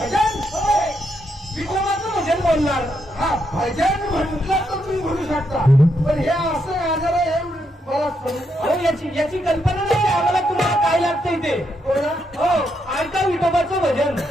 विठोबाचं भजन बोलणार. हा भजन म्हटलं तर तुम्ही म्हणू शकता, पण हे असं आजार आहे मला अहो याची कल्पना नाही आम्हाला. तुम्हाला काय लागतंय ते? हो ऐका विठोबाचं भजन.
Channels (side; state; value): both; normal; correlation 0.79